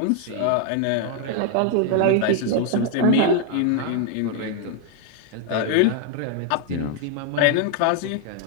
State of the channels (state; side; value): different; both; correlation 0.00